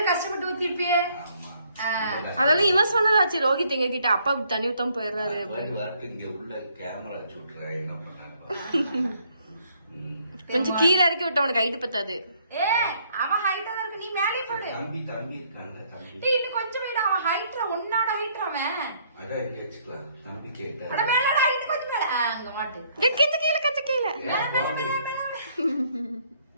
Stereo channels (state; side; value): inverted; both; correlation -0.67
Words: கஷ்டப்பட்டு ஊத்திருப்பியே. அதெல்லாம் இவன் சொன்னதாச்சு. ரோஹித் எங்க கிட்ட அப்பா தண்ணி ஊத்தாம போயிடுறாரு. இங்க உள்ள கேமரா வச்சு விட்டுறேன். என்ன பண்ணாங்க கொஞ்சம் கீழே இறக்கி விட்டு அவனுக்கு ஹைட் பத்தாது. அவன் ஹைட்டா தான் இருக்கு. நீ மேலே போடு. தம்பி இருக்காங்க. தம்பி இன்னும் கொஞ்சம் வீடு. அவன் ஹைட்ல உன்னோட ஹைட் அவன். அதான் வச்சுக்கலாம். தம்பி கேட்டா அட மேலட ஹைட் கொஞ்சம் மேல. அங்க மாட்டு. கச்ச கீழே